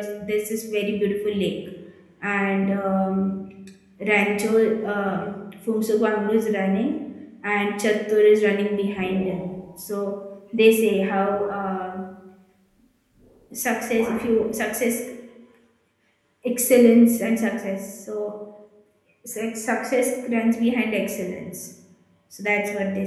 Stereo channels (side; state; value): both; identical; correlation 1.00